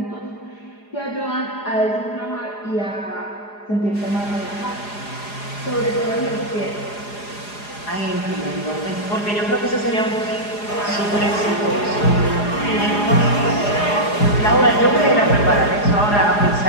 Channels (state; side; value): late; right; 4.8 ms